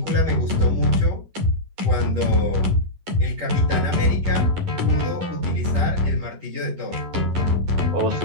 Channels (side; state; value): left; late; 11 ms